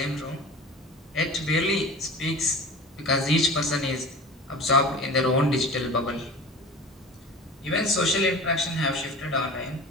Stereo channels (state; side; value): normal; both; correlation 0.37